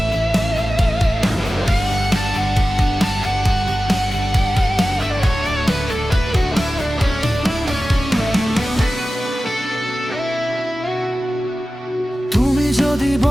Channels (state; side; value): normal; both; correlation 0.94